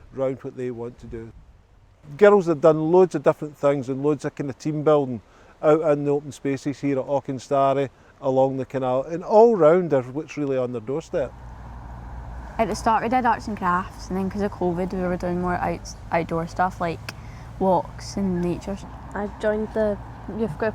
around what they want to do. Girls have done loads of different things and loads of kind of team building out in the open spaces here at Auchenstary, along the canal, and all round are what's really on their doorstep. At the start we did arts and crafts, and then because of COVID we were doing more outdoor stuff like walks and nature. I joined the youth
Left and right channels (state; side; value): identical; both; correlation 1.00